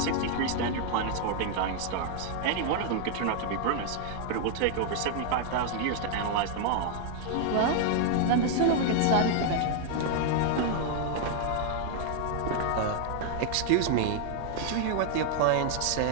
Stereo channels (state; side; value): different; both; correlation 0.00